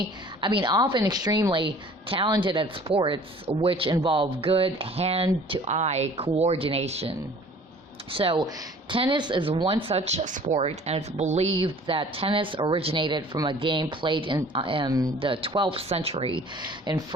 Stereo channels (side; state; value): both; normal; correlation 0.50